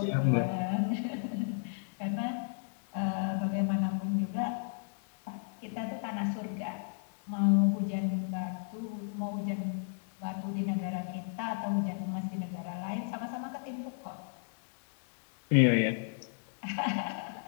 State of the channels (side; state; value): right; silent; digital silence